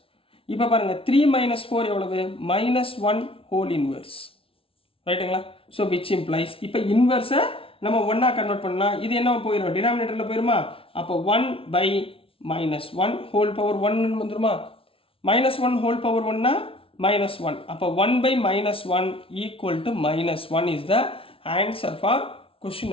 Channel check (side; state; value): right; late; 0.26 ms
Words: இப்போ பாருங்கள் 3 - 4 எவ்வளவு? -1 ஹோல் இன்வர்ஸ், ரைட்டுங்களா? ஸோ விச் இம்ப்ளைஸ் இப்போ இன்வர்ஸை நம்ம 1ஆக கன்வெர்ட் பண்ணால் இது என்ன போயிடும்? டினாமினேட்டரில் போயிடுமா? அப்போ 1/-1 ஹோல் பவர் 1 வந்துடுமா? -1 ஹோல் பவர் 1னா -1. அப்போ 1/-1 equal to -1 is the answer for question